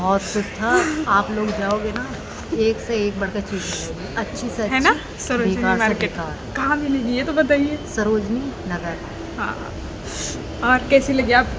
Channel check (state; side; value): identical; both; correlation 1.00